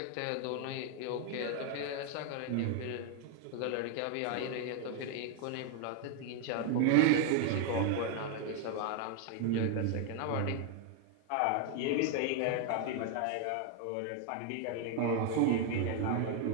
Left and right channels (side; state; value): both; different; correlation 0.00